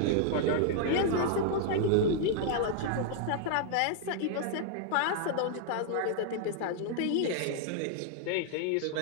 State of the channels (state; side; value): different; both; correlation -0.01